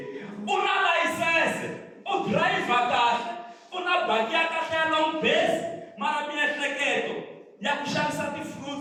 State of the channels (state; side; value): identical; both; correlation 1.00